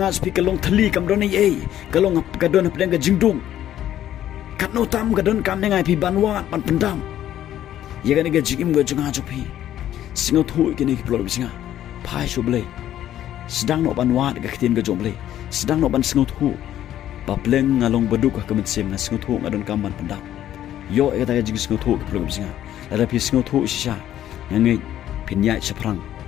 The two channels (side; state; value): right; quieter; 11.9 dB